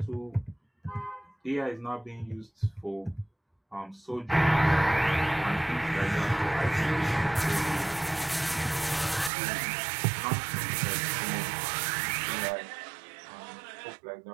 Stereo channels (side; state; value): left; drops out; at 9.3 s